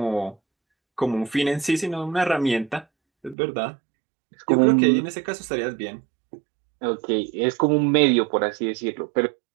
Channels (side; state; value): left; drops out; at 3.4 s